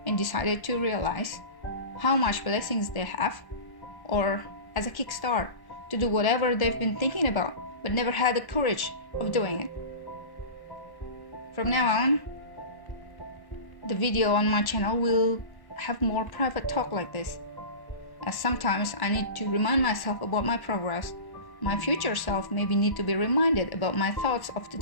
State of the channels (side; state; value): right; late; 1.1 ms